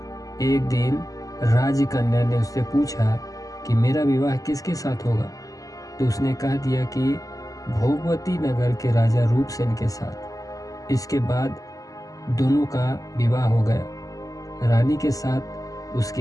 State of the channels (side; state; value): right; late; 0.17 ms